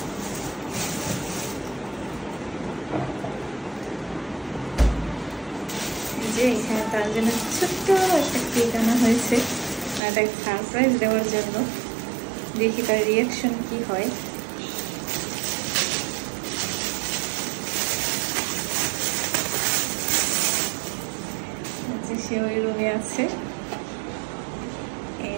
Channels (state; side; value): drops out; left; at 10.0 s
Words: এখানে তার জন্য ছোট্ট একটা কেক আনা হয়েছে, একটা সারপ্রাইজ দেওয়ার জন্য। দেখি তার রিয়াকশন কি হয়। সে ওই রুমে আছে।